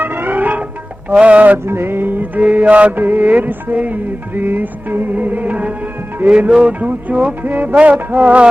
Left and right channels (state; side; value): normal; both; correlation 0.96